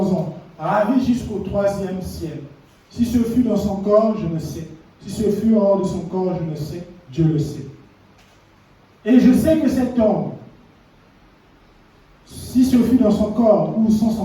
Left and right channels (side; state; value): both; identical; correlation 1.00